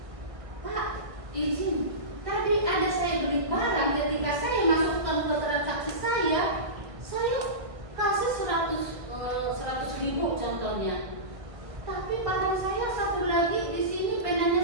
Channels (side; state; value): left; late; 1.5 ms